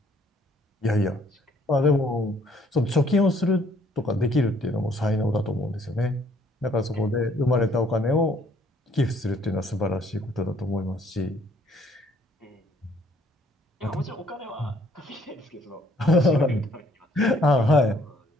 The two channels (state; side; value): normal; both; correlation 0.63